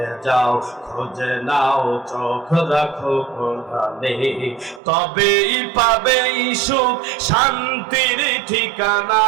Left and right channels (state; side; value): drops out; left; at 4.8 s